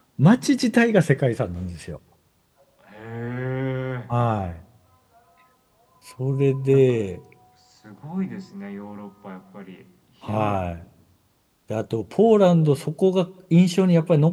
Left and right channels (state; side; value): identical; both; correlation 1.00